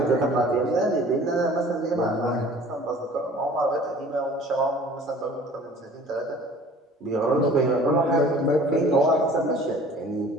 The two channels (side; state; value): both; normal; correlation 0.48